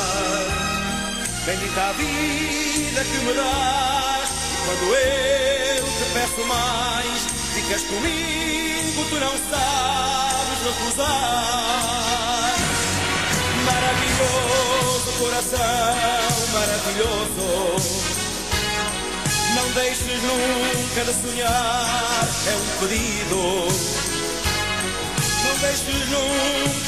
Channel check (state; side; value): identical; both; correlation 1.00